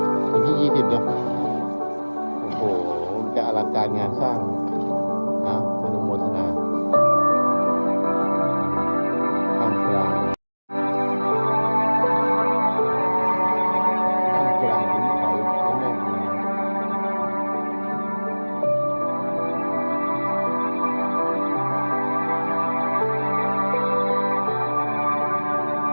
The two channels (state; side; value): inverted; both; correlation -1.00